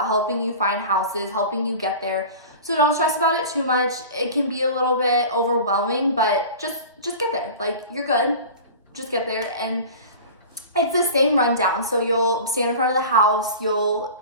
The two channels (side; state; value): both; inverted; correlation -0.36